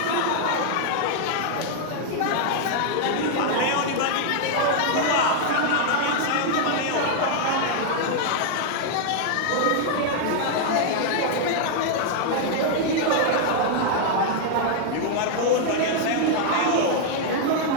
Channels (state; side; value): different; both; correlation 0.00